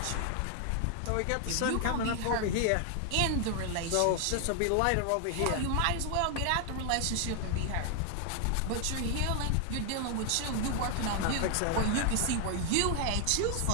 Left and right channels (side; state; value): both; different; correlation 0.00